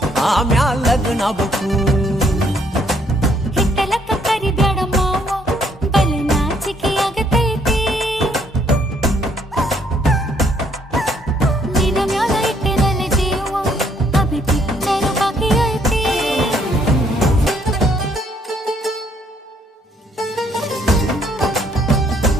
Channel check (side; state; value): both; normal; correlation 0.68